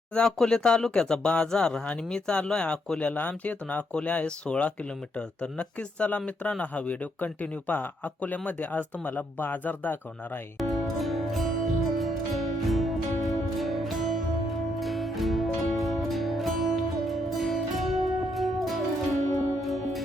अकोले तालुक्याचा बाजार आणि मी चाललोय अकोल्याला. आमच्या इथून अकोले आहे 16 किलोमीटर. तर नक्कीच चला मित्रांनो, हा व्हिडिओ कंटिन्यू पहा. अकोल्यामध्ये आज तुम्हाला बाजार दाखवणार आहे.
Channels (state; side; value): normal; both; correlation 0.75